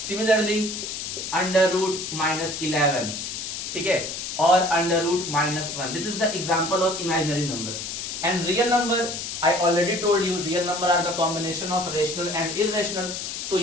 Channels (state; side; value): noise; left; hiss, 6 dB below the sound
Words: under root minus 11, okay, or under root minus 1. This is the example of imaginary number. And real number, I already told you, real number are the combination of rational and irrational. So